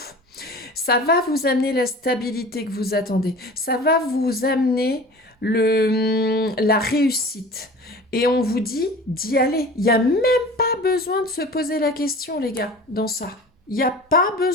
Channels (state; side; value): normal; both; correlation 0.40